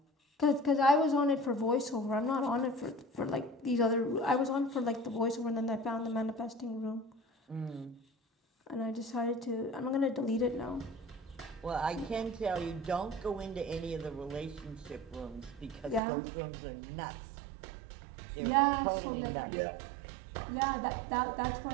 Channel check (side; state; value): left; drops out; at 16.0 s